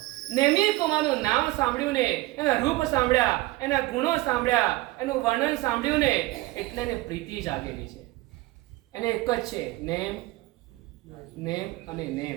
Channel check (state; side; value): quieter; left; 19.3 dB